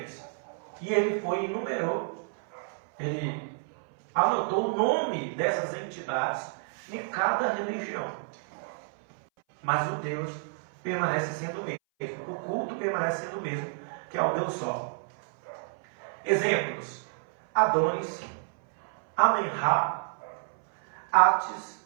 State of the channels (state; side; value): silent; left; 58 dB below the other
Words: E ele foi e enumerou, ele anotou o nome dessas entidades em cada religião. Mas o Deus permanece sendo o mesmo. O culto permanece sendo o mesmo, que é o Deus Sol. Exemplos: Adonis, Amenra, Atis,